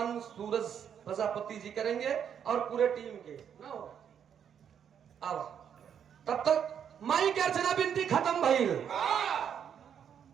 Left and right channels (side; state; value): left; quieter; 8.3 dB